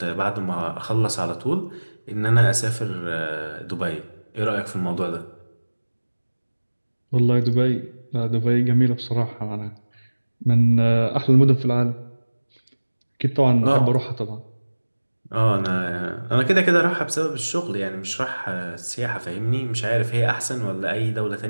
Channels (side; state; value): both; inverted; correlation -1.00